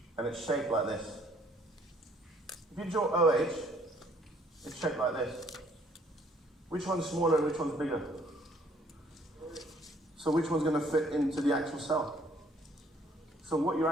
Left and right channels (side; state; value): both; normal; correlation 0.62